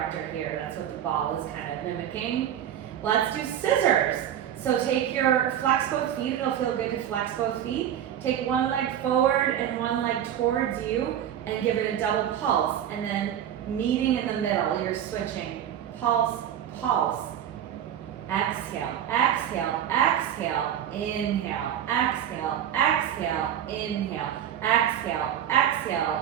here. That's what the ball is kind of mimicking. Let's do scissors. So take your, flex both feet. It'll feel good to flex both feet. Take 1 leg forward and 1 leg towards you and give it a double pulse. And then meeting in the middle, you're switching. Pulse, pulse. Exhale, exhale, exhale, inhale, exhale, exhale, inhale, exhale,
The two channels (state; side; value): quieter; left; 10.3 dB